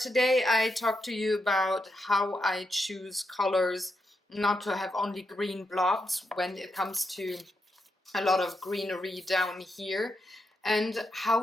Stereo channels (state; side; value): normal; both; correlation 0.84